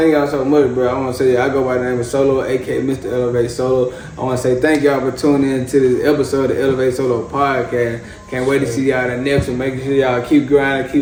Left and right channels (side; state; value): both; identical; correlation 1.00